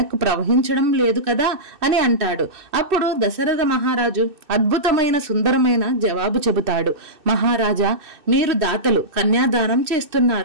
ప్రవహించడం లేదు కదా అని అంటాడు. అప్పుడు దశరథ మహారాజు అద్భుతమైన సుందరమైన జవాబు చెబుతాడు. మహారాజా, మీరు దాతలు, కన్యాదానం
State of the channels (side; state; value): left; late; 2.6 ms